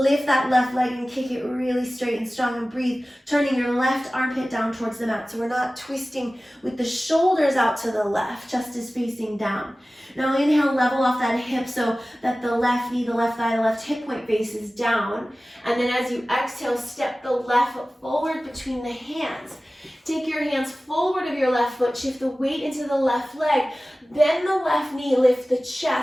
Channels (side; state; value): both; normal; correlation 0.97